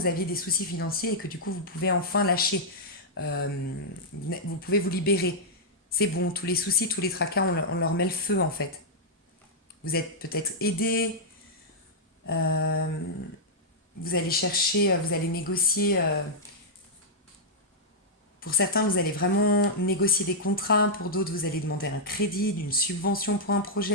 aviez des soucis financiers et que du coup, vous pouvez enfin lâcher. Vous pouvez vous libérer. C'est bon, tous les soucis, tous les tracas, on leur met le feu, en fait. Vous êtes peut-être aidé. Vous allez chercher, vous allez négocier. Pour certains, vous allez vraiment négocier des contrats. Pour d'autres, vous allez demander un crédit, une subvention pour un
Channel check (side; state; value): both; normal; correlation -0.07